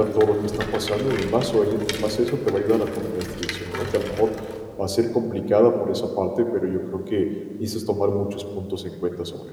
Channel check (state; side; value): identical; both; correlation 1.00